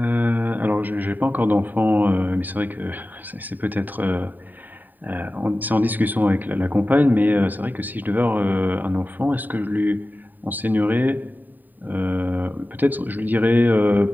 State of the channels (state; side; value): late; left; 0.088 ms